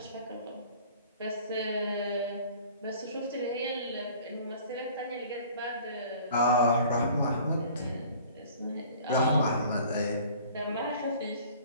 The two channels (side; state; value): both; inverted; correlation -0.48